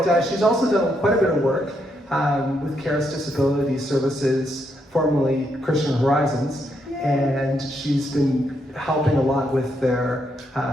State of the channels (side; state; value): both; normal; correlation 0.78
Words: she's also done quite a bit of work with Caris Disability Services, formerly Christian Horizons. And she's been helping a lot with their